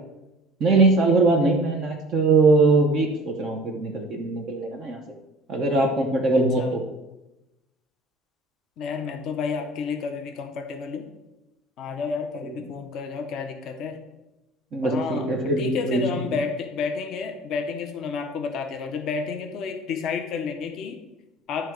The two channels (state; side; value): normal; both; correlation 0.46